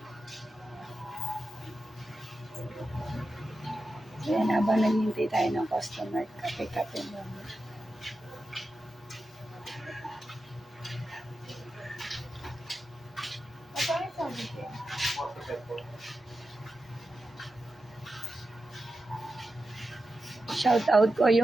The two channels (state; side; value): normal; both; correlation 0.91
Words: Ayan, habang naghihintay tayo ng customer, kape-kape muna. Shout out ko